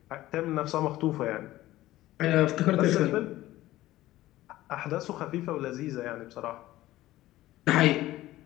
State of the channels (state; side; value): quieter; right; 15.9 dB